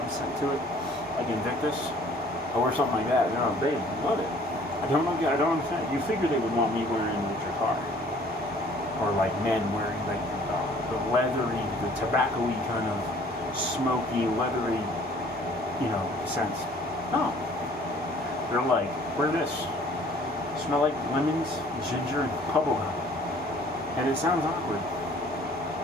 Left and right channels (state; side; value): normal; both; correlation 0.55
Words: scent to it, like Invictus. I wear something like that, you know, they love it. I don't understand. You figure they would want me wearing the Drakkar, or like men wearing like the leathery, the tobacco-y kind of smoky, leathery, you know, scents. No, they're like, wear this. Smell like lemons, ginger, and bubblegum. And it sounds awkward,